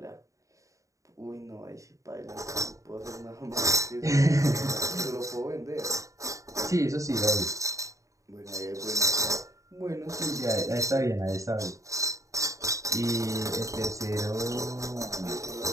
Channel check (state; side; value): late; left; 0.16 ms